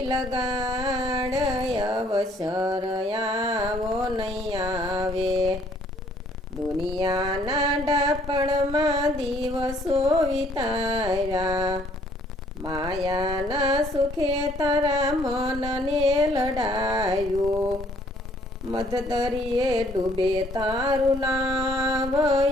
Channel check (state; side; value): normal; both; correlation 0.62